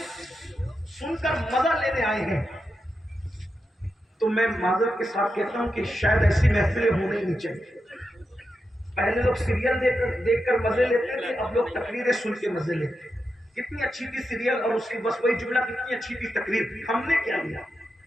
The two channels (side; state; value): both; normal; correlation 0.87